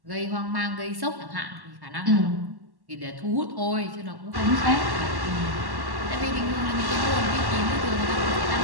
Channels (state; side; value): late; left; 1.1 ms